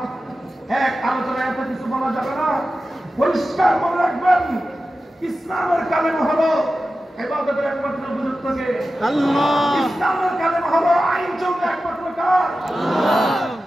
এক আলোচনায় এত কিছু বলা যাবে না। পরিষ্কার মনে রাখবেন, ইসলামের কালেমা হলো ইবাদতের একমাত্র গুরুত্বকে আল্লাহ, ইসলামের কালেমা হলো আইন চলবে একমাত্র কার আল্লাহ।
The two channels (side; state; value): both; normal; correlation 0.93